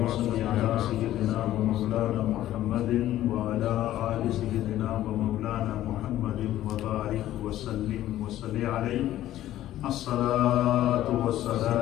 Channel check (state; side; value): quieter; right; 13.5 dB